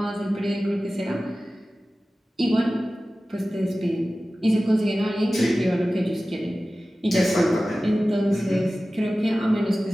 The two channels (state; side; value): normal; both; correlation 0.96